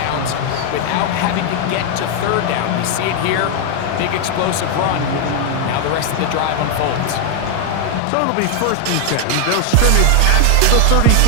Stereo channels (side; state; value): both; different; correlation 0.00